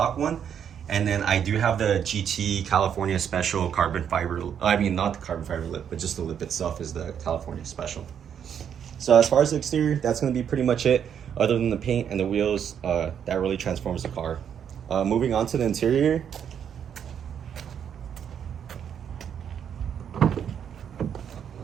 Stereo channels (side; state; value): left; quieter; 8.4 dB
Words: one, and then I do have the GT California Special carbon fiber, not the carbon fiber lip, but just the lip itself is the California Special. So as far as the exterior, that's going to be pretty much it. Other than the paint and the wheels, that really transforms the car. Moving on to the interior.